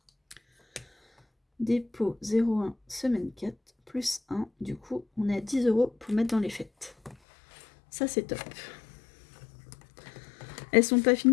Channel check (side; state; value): right; drops out; at 7.2 s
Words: Dépôt 0,1, semaine 4, plus 1. Du coup, on est à 10 € pour mettre dans les fêtes. Ça, c'est top. Elles sont pas